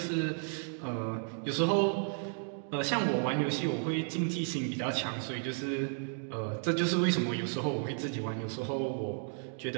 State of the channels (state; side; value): silent; left; 56 dB below the other